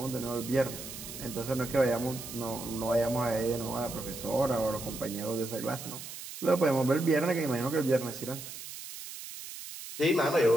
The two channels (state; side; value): noise; right; hiss, 11 dB below the sound